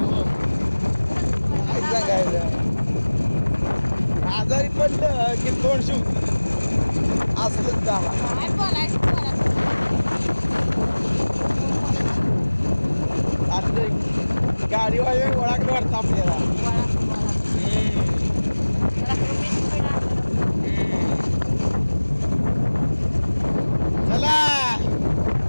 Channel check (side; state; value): both; inverted; correlation -1.00